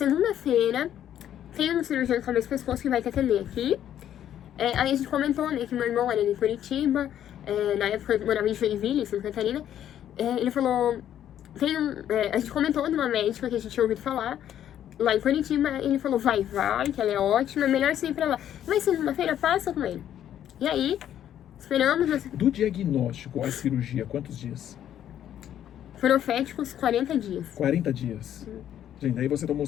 tem um cirurgião de cabeça e pescoço que vai te atender aqui. Aí a gente comentou, né, que meu irmão era de Curitiba, na época eu morava em Joinville, em Santa Catarina. Ele falou, a gente comentou de uma médica que a gente tinha ouvido falar, lá em Curitiba. Ele falou, vai, que ela é ótima, é melhor você ir pra lá. Mas segunda-feira passa com ele. E aí, esperamos. Do diagnóstico à cirurgia, quantos dias? Proféticos 40 dias. 40 dias. Gente, aí você tomou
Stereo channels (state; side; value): quieter; right; 10.7 dB